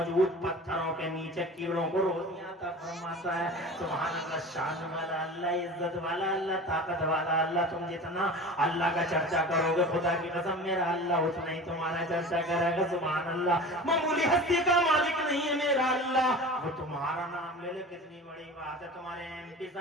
پتھروں کے نیچے کیڑوں کو روزیاں عطا فرماتا ہے۔ سبحان اللہ، شان والا اللہ، عزت والا اللہ، طاقت والا اللہ، تم جتنا اللہ کا چرچا کرو گے خدا کی قسم میرا اللہ اتنا ہی تمہارا چرچا کرے گا۔ سبحان اللہ، معمولی ہستی کا مالک نہیں ہے میرا اللہ، وہ تمہارا نام لے لے کتنی بڑی بات ہے، تمہارے ایم پی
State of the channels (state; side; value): normal; both; correlation 0.36